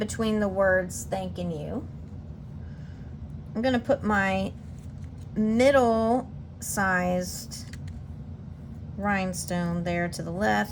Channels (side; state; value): both; identical; correlation 1.00